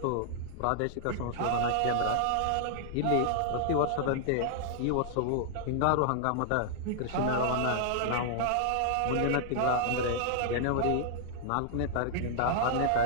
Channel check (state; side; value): different; both; correlation -0.01